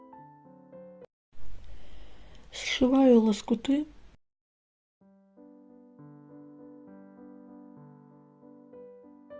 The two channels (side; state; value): both; identical; correlation 1.00